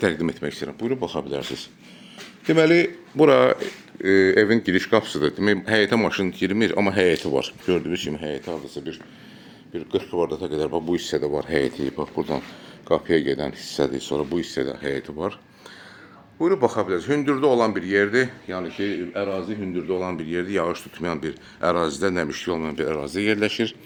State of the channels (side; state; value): both; identical; correlation 1.00